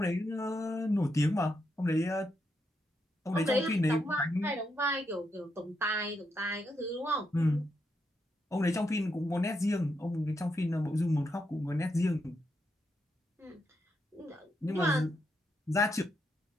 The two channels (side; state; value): both; normal; correlation 0.81